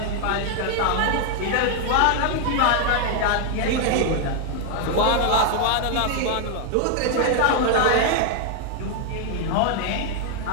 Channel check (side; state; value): both; different; correlation 0.00